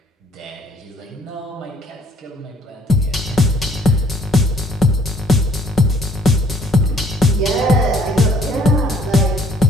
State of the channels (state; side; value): normal; both; correlation 0.61